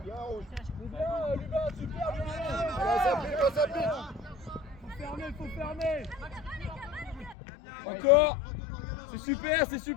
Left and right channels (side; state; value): right; drops out; at 7.4 s